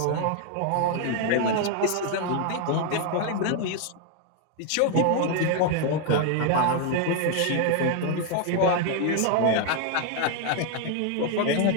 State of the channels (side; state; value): both; different; correlation 0.01